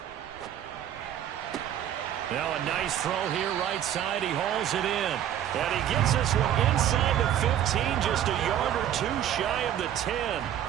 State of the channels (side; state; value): left; quieter; 10.7 dB